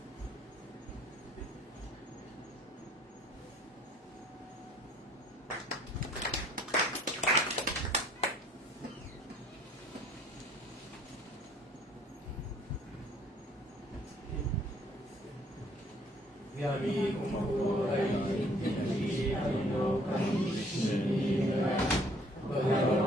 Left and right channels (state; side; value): normal; both; correlation 0.60